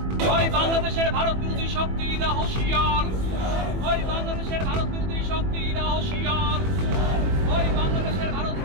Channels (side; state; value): left; late; 21 ms